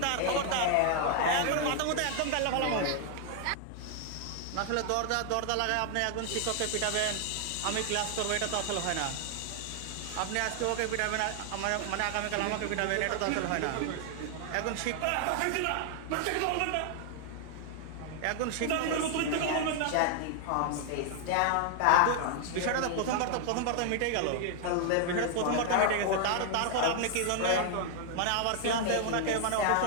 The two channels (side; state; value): both; different; correlation 0.00